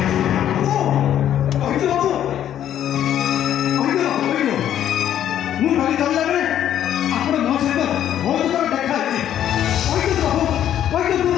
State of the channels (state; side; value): quieter; right; 10.8 dB